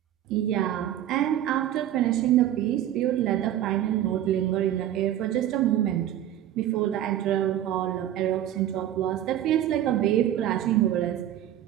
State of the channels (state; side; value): quieter; left; 11.9 dB